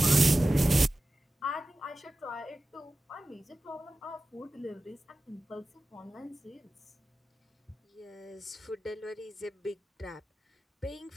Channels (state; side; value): normal; both; correlation 0.95